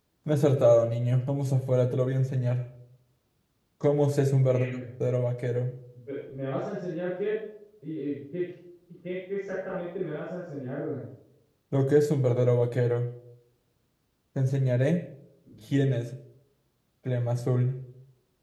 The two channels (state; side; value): identical; both; correlation 1.00